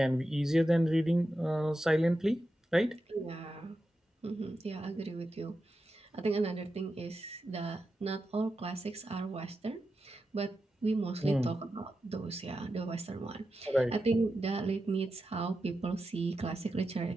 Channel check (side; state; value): both; normal; correlation 0.90